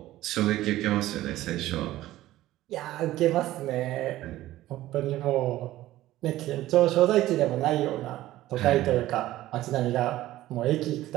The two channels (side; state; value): left; quieter; 15.3 dB